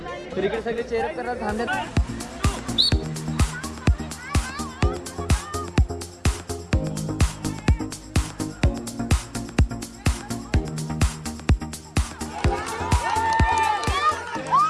तर इकडे सगळे चेअरअप करतात थांबतात.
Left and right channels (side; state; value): both; identical; correlation 1.00